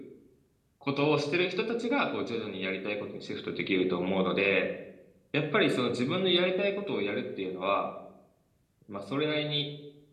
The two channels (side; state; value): both; identical; correlation 1.00